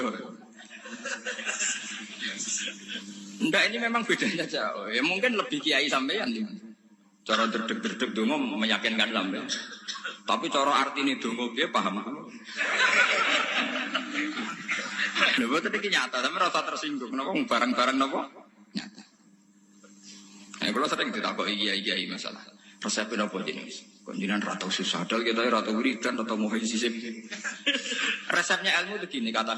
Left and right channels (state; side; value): identical; both; correlation 1.00